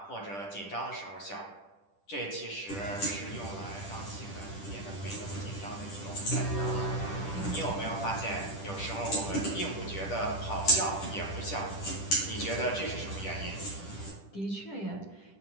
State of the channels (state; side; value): late; right; 10 ms